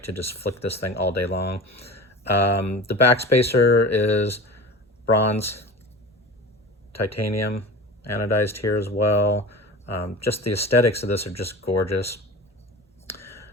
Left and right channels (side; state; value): both; normal; correlation 0.34